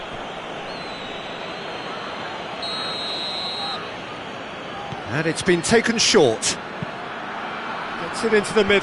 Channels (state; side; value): identical; both; correlation 1.00